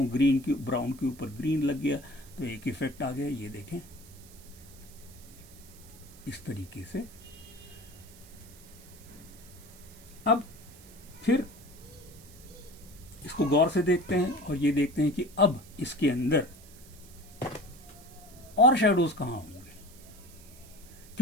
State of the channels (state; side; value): noise; right; hiss, 21 dB below the sound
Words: ग्रीन की ब्राउन के ऊपर ग्रीन लग गया तो एक इफेक्ट आ गया। ये देखें, इस तरीके से। अब फिर इसको गौर से देखते हैं और ये देखते हैं कि अब इसके अंदर और शेडोज कहाँ होंगे,